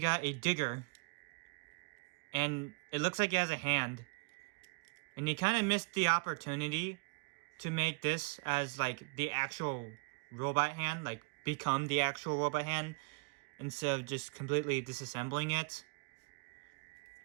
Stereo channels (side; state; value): left; quieter; 32.1 dB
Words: a digger. And it looks like it has a hand. And you kind of missed the opportunity to make this as like the actual robot hand, like become the actual robot hand, instead of just completely disassembling it.